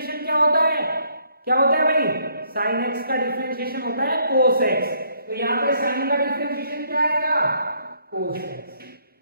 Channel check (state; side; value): inverted; both; correlation -0.68